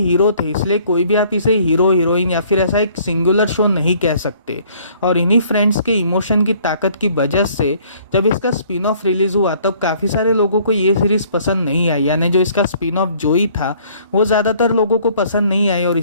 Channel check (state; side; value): inverted; both; correlation -0.58